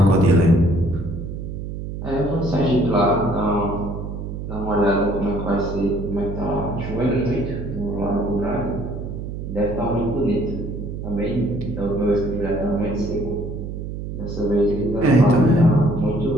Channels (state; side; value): noise; right; hum, 7 dB below the sound